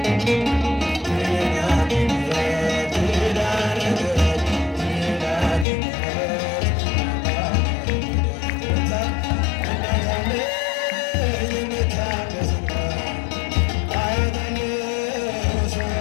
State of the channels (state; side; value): drops out; right; at 5.7 s